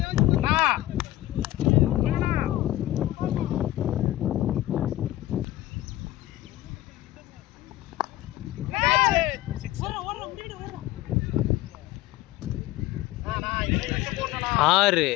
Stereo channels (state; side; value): quieter; right; 15.8 dB